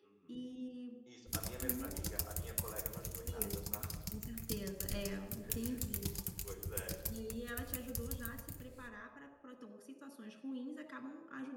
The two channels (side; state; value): both; identical; correlation 1.00